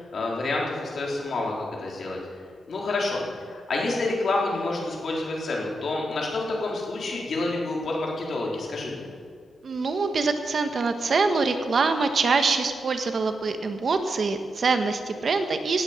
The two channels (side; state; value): both; normal; correlation 0.85